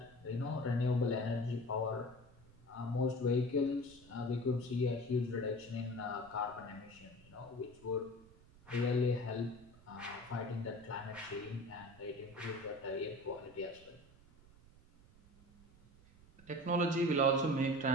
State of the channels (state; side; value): noise; right; rumble, 24 dB below the sound